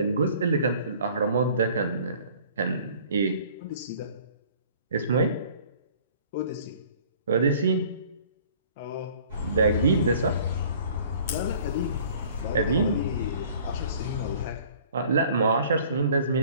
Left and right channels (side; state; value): both; inverted; correlation -0.52